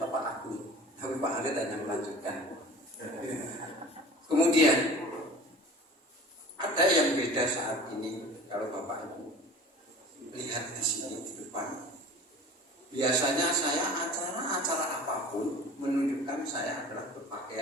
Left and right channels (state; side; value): normal; both; correlation 0.41